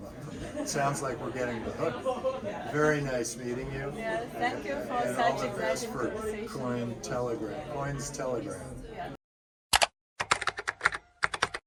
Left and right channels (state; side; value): identical; both; correlation 1.00